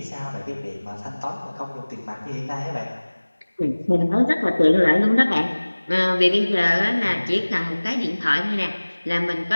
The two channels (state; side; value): inverted; both; correlation -1.00